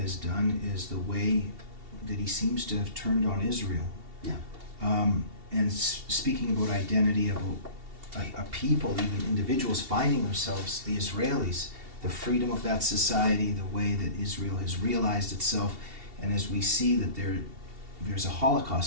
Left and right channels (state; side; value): late; left; 2.7 ms